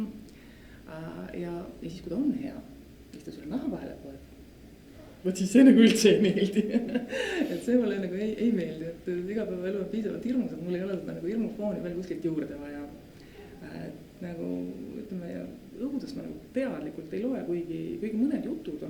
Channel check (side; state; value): both; identical; correlation 1.00